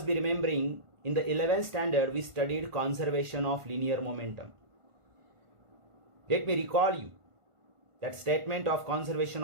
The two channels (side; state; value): left; late; 1.5 ms